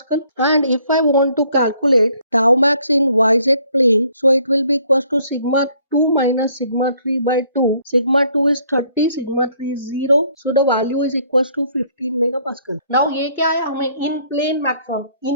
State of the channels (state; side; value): inverted; both; correlation -0.64